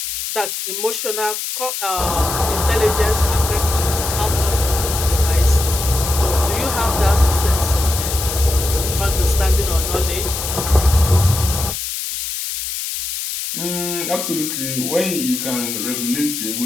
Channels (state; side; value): noise; left; hiss, 4 dB below the sound